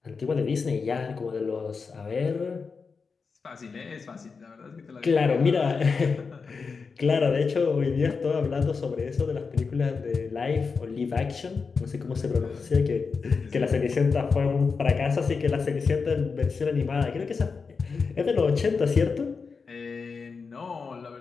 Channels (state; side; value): quieter; right; 5.0 dB